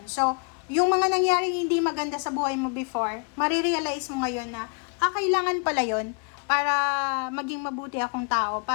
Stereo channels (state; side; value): quieter; right; 38.9 dB